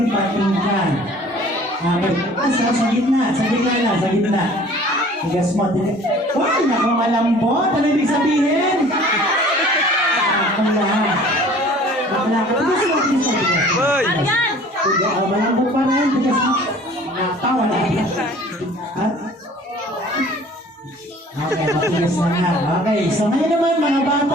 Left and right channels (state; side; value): normal; both; correlation 0.49